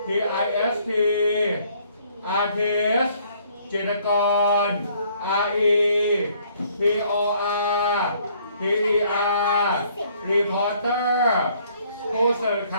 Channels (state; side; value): inverted; both; correlation -0.63